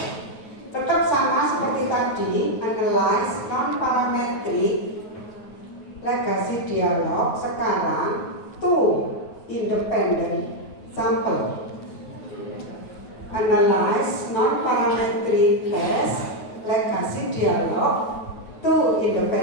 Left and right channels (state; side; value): late; right; 9.3 ms